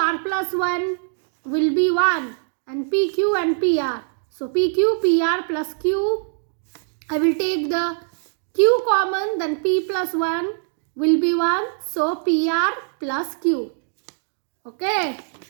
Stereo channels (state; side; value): silent; left; digital silence